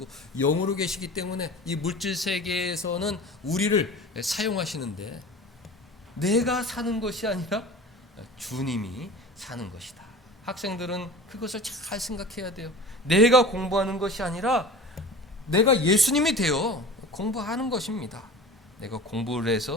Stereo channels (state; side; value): normal; both; correlation 0.37